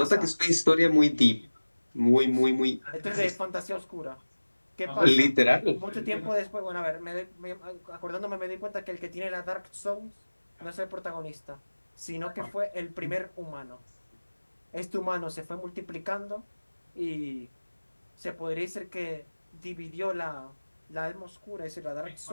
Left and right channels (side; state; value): both; inverted; correlation -1.00